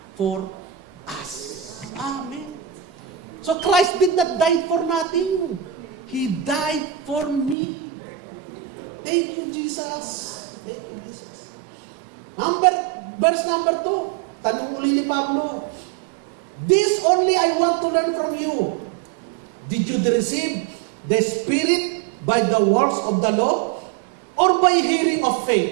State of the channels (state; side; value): drops out; left; at 7.6 s